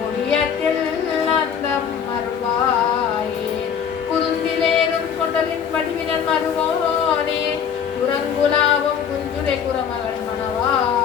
ஓவியத்தில் அந்தம் அருள்வாயே குருந்திலேறும் கொண்டலின் வடிவினன் மருவோனே குரங்குலாவும் குஞ்சுரை குரமகள்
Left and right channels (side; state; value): right; quieter; 7.7 dB